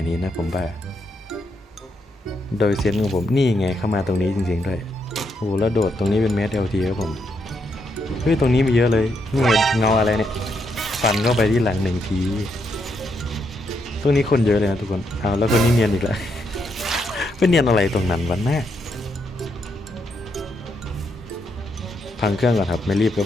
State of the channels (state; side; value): normal; both; correlation 0.79